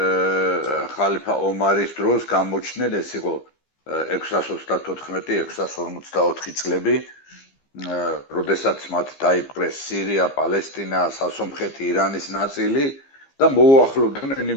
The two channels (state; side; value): late; right; 15 ms